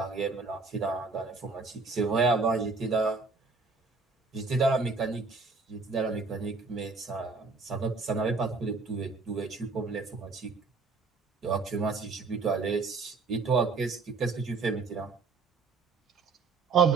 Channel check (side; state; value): left; quieter; 4.2 dB